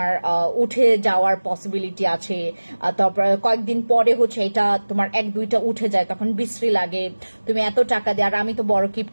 উঠে যাওয়ার পসিবিলিটি আছে, তারপর কয়েকদিন পরে হচ্ছে এটা তোমার 1-2টা উঠে যায়, তখন বিশ্রী লাগে, তুমি এত টাকা দিয়ে। আর আমি তো বড়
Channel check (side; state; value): both; inverted; correlation -1.00